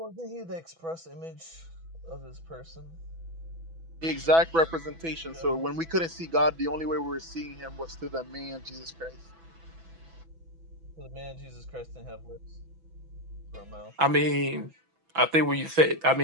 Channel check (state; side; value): late; left; 6.1 ms